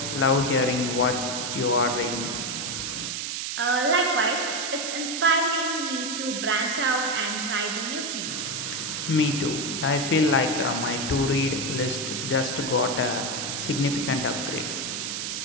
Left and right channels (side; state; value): right; noise; hiss, 3 dB below the sound